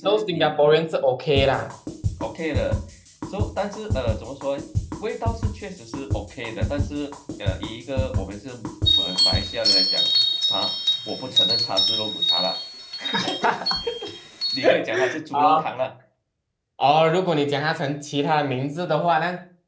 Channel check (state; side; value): identical; both; correlation 1.00